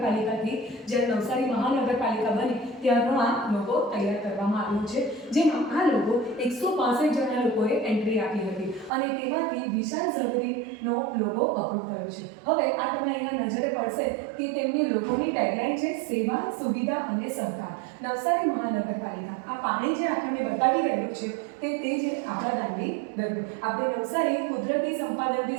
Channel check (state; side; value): drops out; left; at 8.9 s